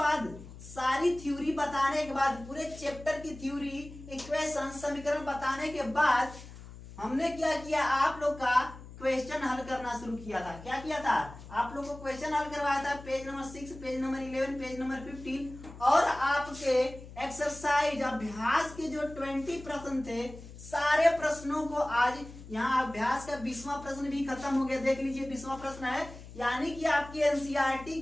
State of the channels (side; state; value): left; noise; hum, 16 dB below the sound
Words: सारी थ्योरी बताने के बाद, पूरे चैप्टर की थ्योरी, इक्वेशन, समीकरण बताने के बाद हमने क्या किया, आप लोग का क्वेश्चन हल करना शुरू किया था। क्या किया था, आप लोग को क्वेश्चन हल करवाया था, page number 6, page number 11, page number 15, और आपके एक्सरसाइज अभ्यास के जो 20 प्रश्न थे, सारे प्रश्नों को आज यहाँ अभ्यास का 20वां प्रश्न भी खत्म हो गया। देख लीजिए 20वां प्रश्न है, यानी कि आपकी एनसीईआरटी